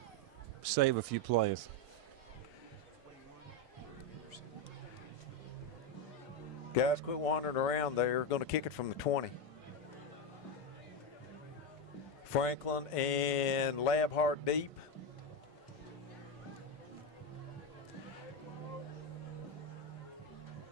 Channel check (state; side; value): normal; both; correlation 0.09